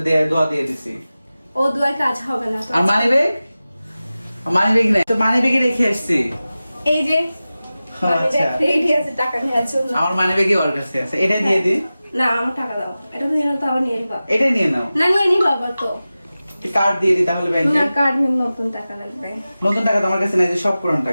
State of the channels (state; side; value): inverted; both; correlation -0.95